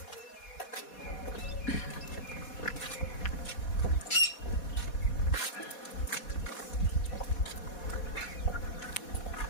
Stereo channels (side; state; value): right; late; 4.2 ms